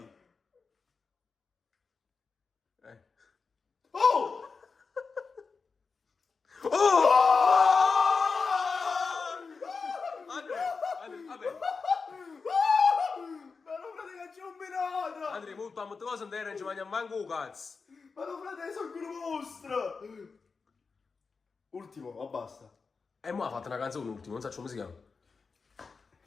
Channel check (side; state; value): right; quieter; 4.8 dB